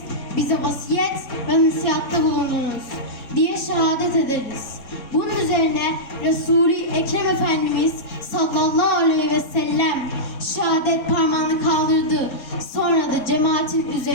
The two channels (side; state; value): right; late; 4.2 ms